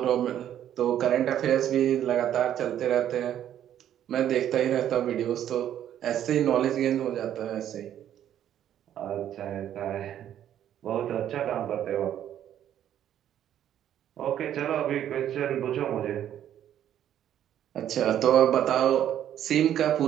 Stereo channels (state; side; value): quieter; left; 10.7 dB